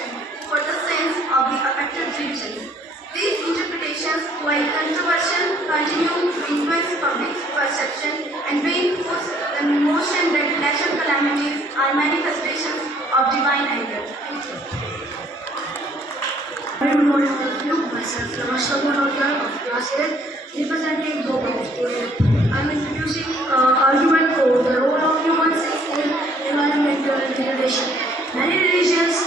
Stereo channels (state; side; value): normal; both; correlation 0.62